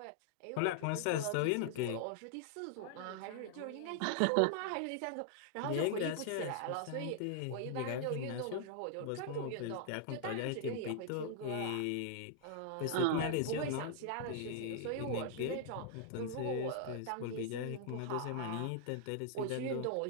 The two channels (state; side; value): different; both; correlation -0.01